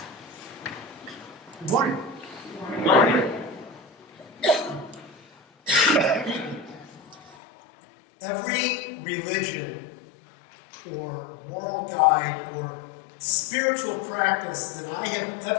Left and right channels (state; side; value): drops out; right; at 7.4 s